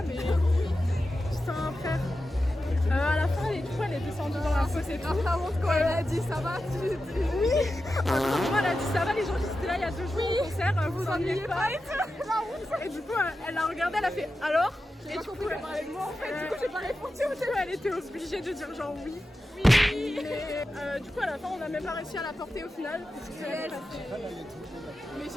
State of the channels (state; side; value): normal; both; correlation 0.91